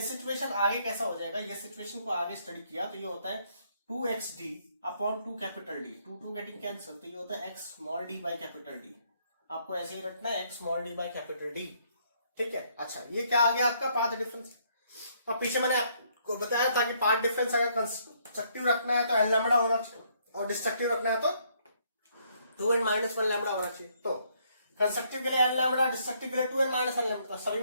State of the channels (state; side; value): inverted; both; correlation -0.69